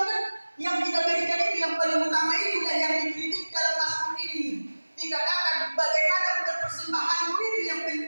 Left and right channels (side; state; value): both; inverted; correlation -1.00